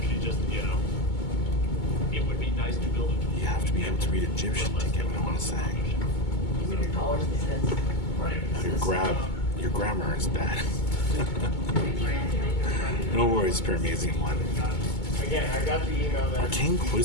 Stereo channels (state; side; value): late; right; 2.2 ms